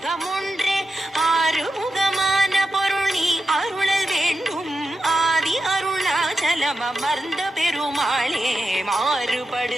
ஆறுமுகமான பொருள் நீ அருளல் வேண்டும், ஆதி அருணாச்சலம் அமர்ந்த பெருமாளே. மாறுபடு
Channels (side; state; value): both; normal; correlation 0.89